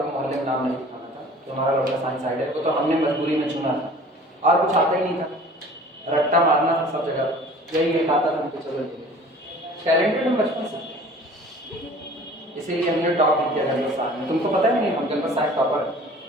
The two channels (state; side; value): normal; both; correlation 0.46